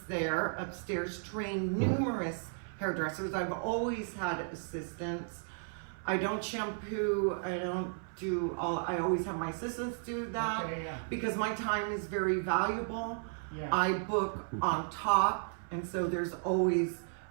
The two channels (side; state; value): left; silent; 55 dB below the other